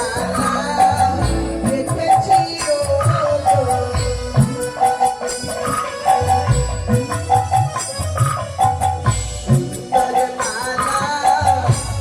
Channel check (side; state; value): both; identical; correlation 1.00